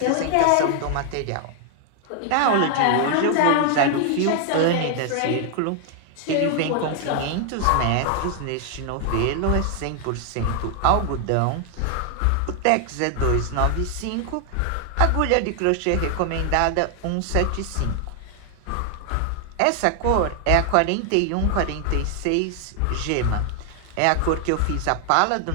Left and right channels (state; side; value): different; both; correlation 0.00